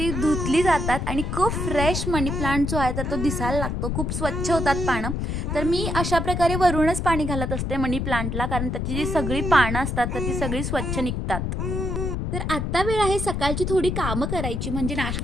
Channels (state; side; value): noise; left; rumble, 2 dB below the sound